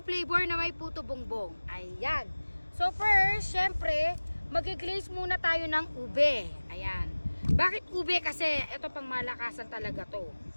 flavor na may puto bongbong. Ayan. So first, syempre, mag-glaze muna tayo ng ube. Ayan. Bakit ube? Kasi ito pang malakasan talaga to.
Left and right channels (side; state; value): both; inverted; correlation -1.00